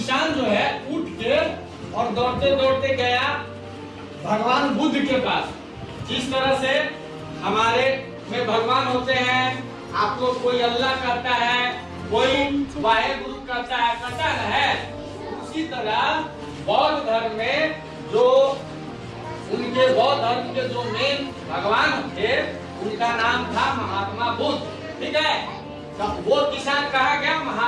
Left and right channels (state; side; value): identical; both; correlation 1.00